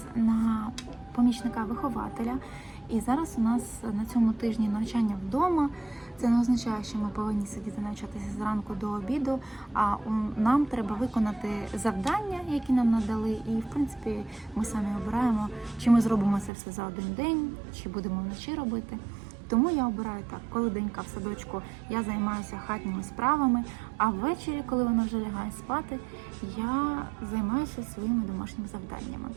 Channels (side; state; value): left; drops out; at 16.5 s